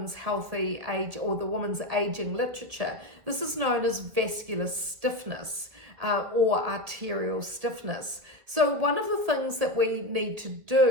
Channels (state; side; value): late; left; 2.1 ms